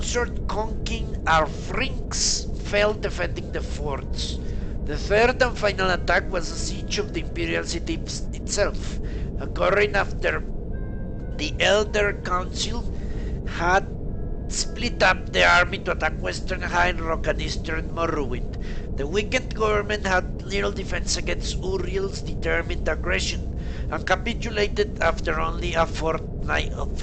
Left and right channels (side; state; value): both; identical; correlation 1.00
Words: King Arfrinx fell defending the forts. The third and final attack was a siege of the imperial city itself, occurring after the Elder Council had split up the army to attack western High Rock and eastern Morrowind. The weakened government had little defense against Uriel's determined aggression and capitulated after only a fortnight of